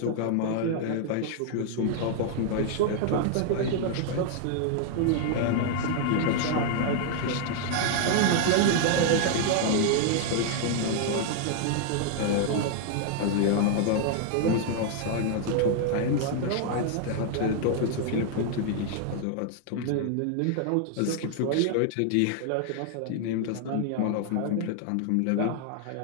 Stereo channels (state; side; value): different; both; correlation 0.00